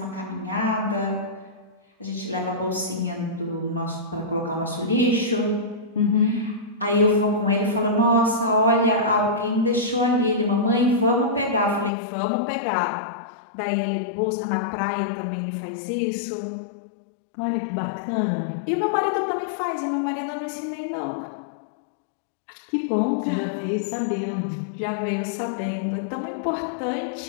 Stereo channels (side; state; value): right; drops out; at 11.9 s